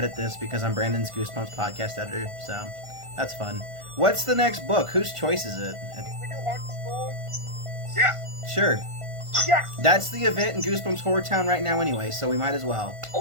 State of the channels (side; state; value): left; late; 1.5 ms